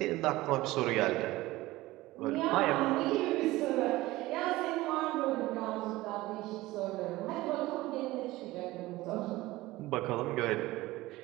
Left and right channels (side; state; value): left; quieter; 18.4 dB